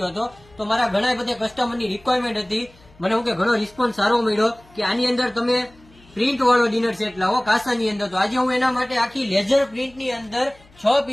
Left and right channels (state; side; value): noise; left; hum, 28 dB below the sound